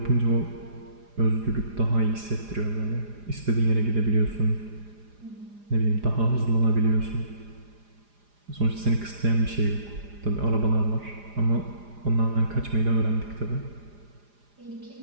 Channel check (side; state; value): left; late; 4.9 ms